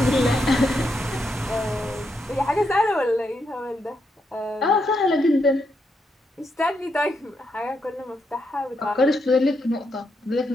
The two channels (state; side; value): normal; both; correlation 0.81